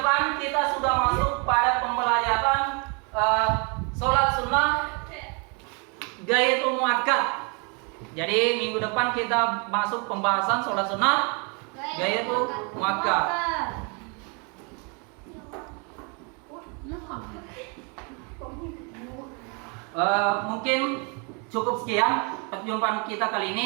kita sudah masuk pada pembelajaran sholat sunnah gayatul muakkad. Jadi minggu depan kita masuk pembahasan sholat sunnah gayatul muakkad. Mungkin cukup sekian perjumpaan kita kali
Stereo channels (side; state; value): left; quieter; 34.1 dB